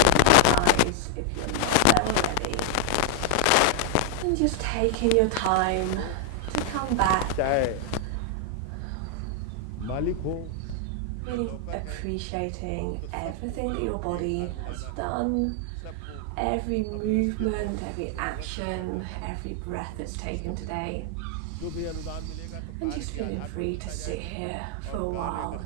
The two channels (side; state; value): both; different; correlation 0.00